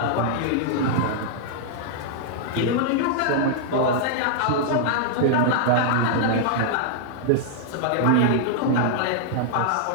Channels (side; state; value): both; different; correlation -0.01